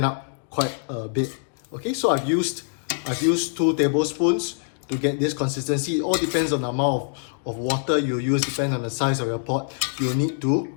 up quite a bit. Okay, so I've used 2 tablespoons to get this consistency. It all depends on the amount of water you use, depends on the size of your pot. You need to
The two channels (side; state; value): right; silent; digital silence